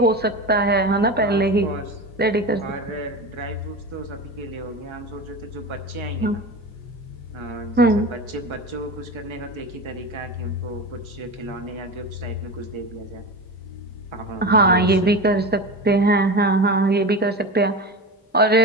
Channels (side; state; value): both; normal; correlation 0.26